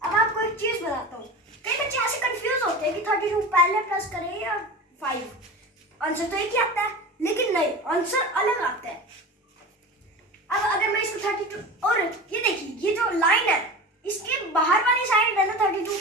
अब आपको एक चीज बताता हूँ। कई बच्चे ऐसे कंफ्यूज होते हैं कि 32 पहले प्लस करें या 5। आंसर तो एक ही आता है, लेकिन नहीं, आंसर अलग आता है। अब अगर मैं इसको 32, और ये देखिए, ये जो लाइन है इसके बाहर वाली साइड है ना 32,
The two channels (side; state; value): both; normal; correlation 0.31